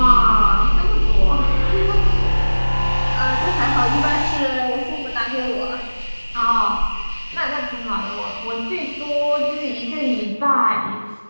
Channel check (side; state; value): both; inverted; correlation -1.00